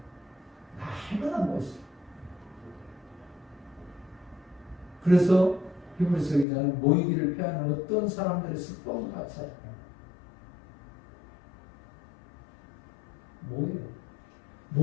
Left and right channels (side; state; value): right; drops out; at 6.5 s